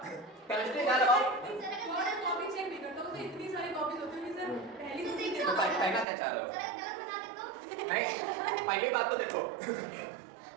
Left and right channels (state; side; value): drops out; left; at 6.1 s